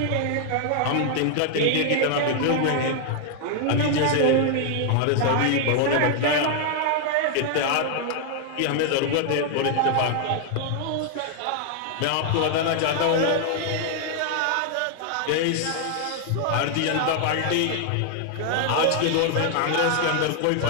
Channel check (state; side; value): different; both; correlation 0.00